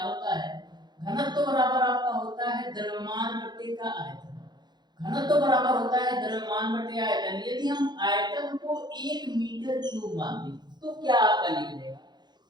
होता है, घनत्व बराबर आपका होता है द्रव्यमान बटे का आयतन। घनत्व बराबर होता है द्रव्यमान बटे आयतन। यदि हम आयतन को 1 मीटर क्यूब मान लें तो क्या आपका निकलेगा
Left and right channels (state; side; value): late; left; 0.21 ms